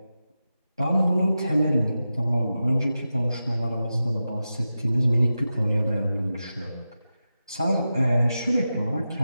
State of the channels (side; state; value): both; inverted; correlation -0.92